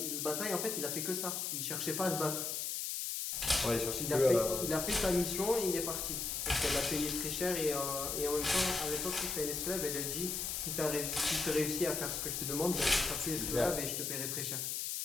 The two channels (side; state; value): left; noise; hiss, 2 dB below the sound